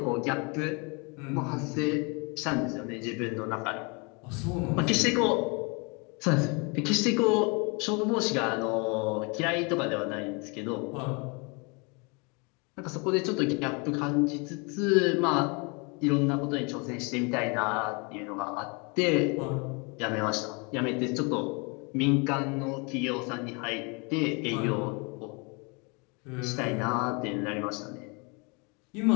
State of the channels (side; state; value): right; quieter; 31.4 dB